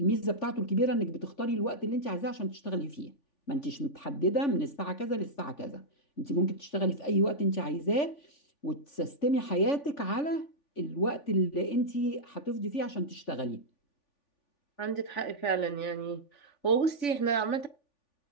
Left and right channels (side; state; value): right; late; 3.5 ms